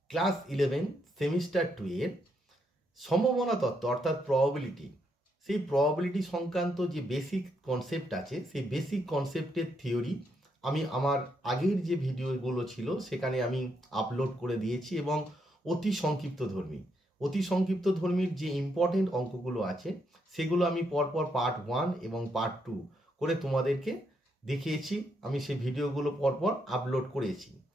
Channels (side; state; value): both; normal; correlation 0.78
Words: class 11 semester 2 এর সম্ভাবনা তত্ত্ব অর্থাৎ প্রবাবিলিটি, সেই প্রবাবিলিটি সংক্রান্ত যে বেসিক কনসেপ্ট আছে সেই বেসিক কনসেপ্টের থিওরি আমি আমার আগের যে ভিডিওগুলো ছিল সেখানে আমি আপলোড করে দিয়েছি এবং অতি সংক্ষিপ্ত ধর্মীর যে ইম্পর্টেন্ট অঙ্কগুলো আছে সেগুলো আমি পরপর পার্ট 1 এবং পার্ট 2 করে তোমাদেরকে দেখিয়েছি। আমি সেই ভিডিওগুলো পরপর আপলোড করেছি।